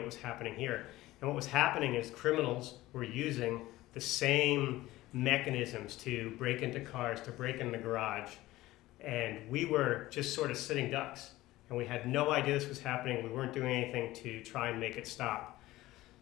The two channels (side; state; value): right; quieter; 17.2 dB